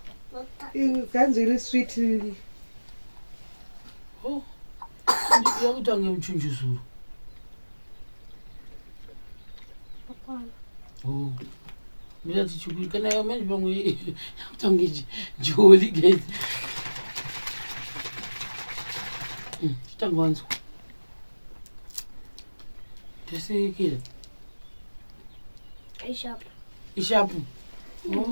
iri sweet yakutange muchunjuzuru mirati chikuri kana yamanje pamwe yakutange joli gezi chitanga wanzwa tasekera ishapu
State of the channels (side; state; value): both; inverted; correlation -1.00